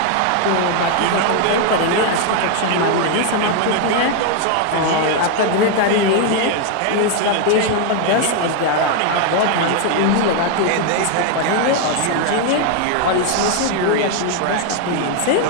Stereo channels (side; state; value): both; different; correlation 0.01